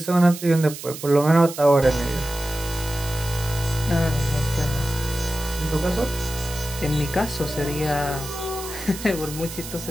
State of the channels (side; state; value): right; noise; hiss, 11 dB below the sound